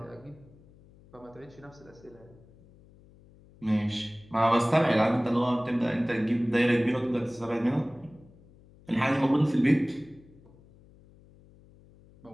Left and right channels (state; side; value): noise; left; hum, 26 dB below the sound